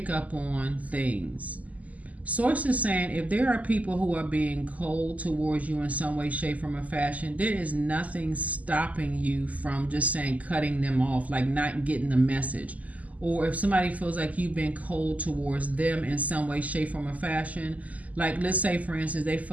up on things. Source is saying if there are people who are being cold towards you in some way, shape, form, or fashion, there is nothing stopping you from just saying cutting them off, like not getting the message. Or if somebody feels like you've been cold towards them in some way, shape, form, or fashion, like let's say for instance they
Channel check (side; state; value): left; late; 0.074 ms